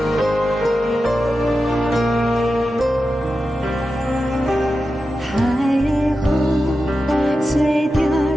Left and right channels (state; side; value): normal; both; correlation 0.91